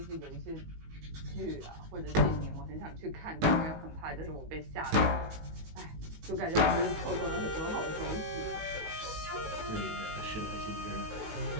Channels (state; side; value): late; left; 19 ms